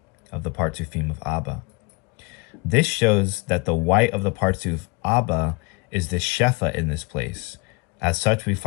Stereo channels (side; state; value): right; quieter; 29.2 dB